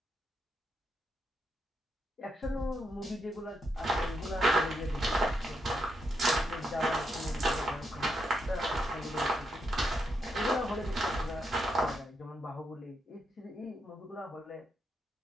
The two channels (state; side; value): normal; both; correlation 0.80